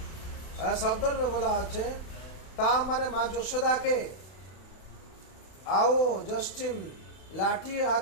শব্দের বলা আছে তা মানে মা যশোদাকে আও জষ্টিম লাঠি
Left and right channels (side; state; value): right; late; 32 ms